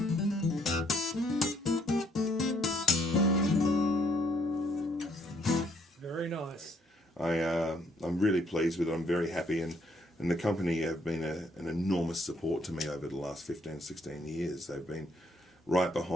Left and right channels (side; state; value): both; normal; correlation 0.68